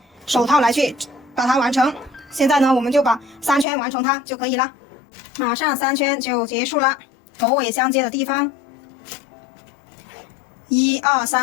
手套来去把它完成。现在呢，我们就把3圈完成它就可以了。马上3圈就结束了，头尾相接的地方，1、2、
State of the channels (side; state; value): right; drops out; at 3.7 s